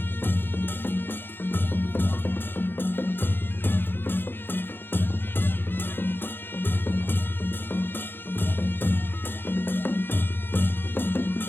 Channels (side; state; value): right; late; 0.10 ms